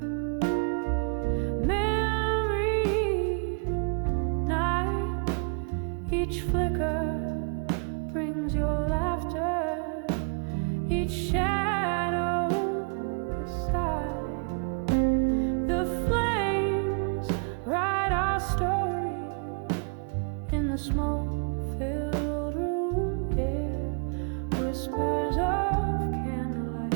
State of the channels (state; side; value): quieter; left; 38.9 dB